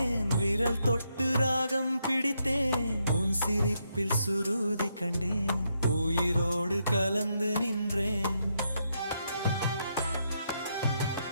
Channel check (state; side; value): inverted; both; correlation -0.79